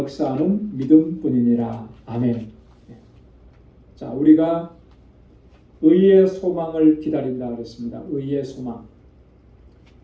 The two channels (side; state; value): both; identical; correlation 1.00